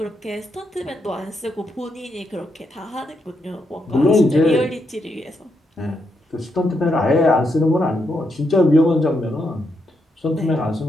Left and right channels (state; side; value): normal; both; correlation 0.80